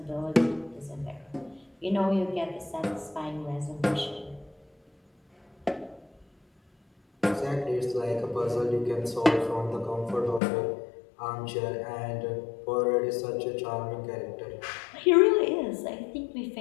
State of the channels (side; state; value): right; drops out; at 10.4 s